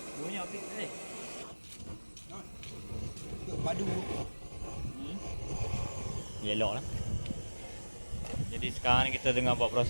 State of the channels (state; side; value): inverted; both; correlation -1.00